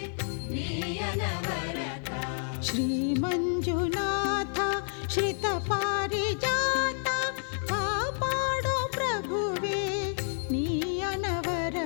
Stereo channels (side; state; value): right; silent; 58 dB below the other